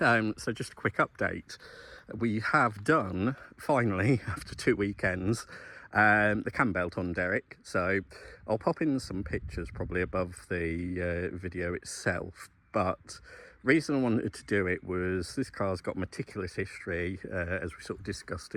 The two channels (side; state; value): both; identical; correlation 1.00